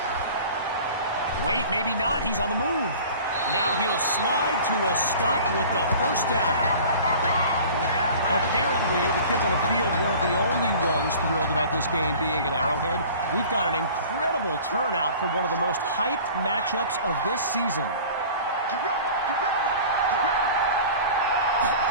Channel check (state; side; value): inverted; both; correlation -0.43